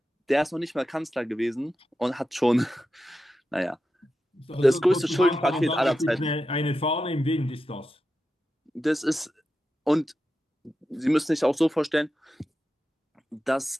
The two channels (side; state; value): both; normal; correlation 0.90